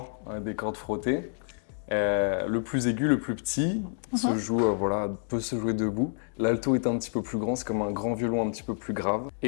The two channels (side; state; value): right; silent; digital silence